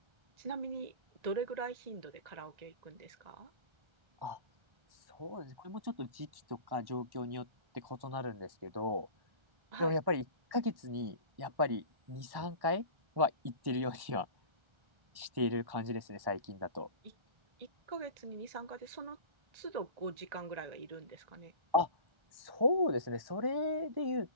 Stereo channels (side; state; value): left; late; 1.1 ms